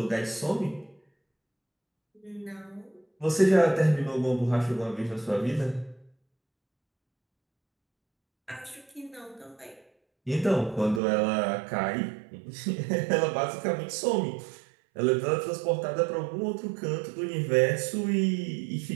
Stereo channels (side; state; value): left; drops out; at 11.0 s